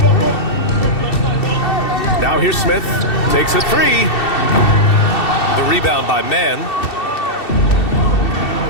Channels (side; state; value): right; late; 2.7 ms